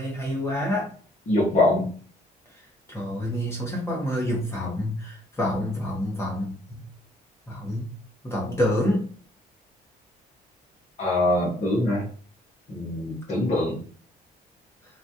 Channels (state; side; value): normal; both; correlation 0.65